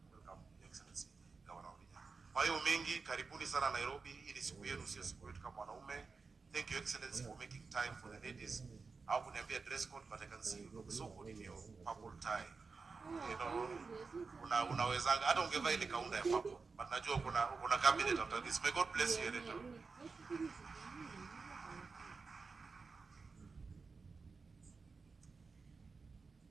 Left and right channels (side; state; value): left; quieter; 4.5 dB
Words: Your Excellency, Governor Wavinya. Kwa hiyo mengi, karibuni sana Nairobi. Hii ni siku yenu, sio siku yetu kama wanaume. Thank you, Excellency, for making time for the ladies. I wouldn't be a dress code, but I can see you look so good in your purple tie. You know, unawezanga hata ungevaa ile kaunda ya purple, but najua kuna cabinet after this. May God bless you, Editor.